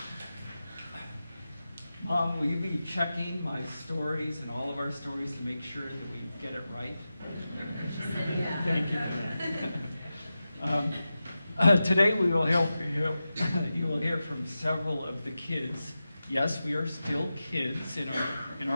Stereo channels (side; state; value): both; inverted; correlation -0.93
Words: Mom, will you be checking my stories and all of our stories to make sure that we get it right? Thank you for that. Today we will you will hear from several of the kids. Yes, we are still kids in